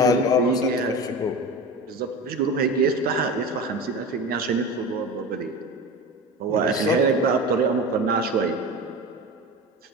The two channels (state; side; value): normal; both; correlation 0.29